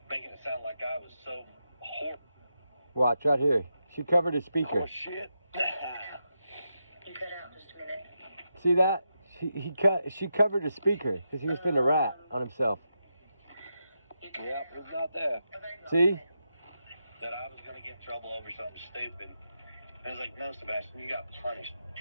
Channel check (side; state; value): both; inverted; correlation -0.85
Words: making it sound like I was so horrible. Watch right here. She covered his speaker. Oh shit! You cut out just a minute. See that? She covered his speaker because he was finna rat on himself. Yep, it's not there. See? That I was gonna get in trouble over something stupid. I was like, "No, Sebastian, you got punished,